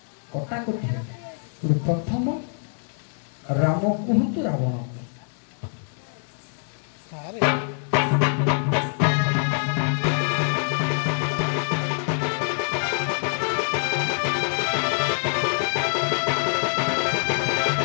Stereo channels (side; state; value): right; silent; 62 dB below the other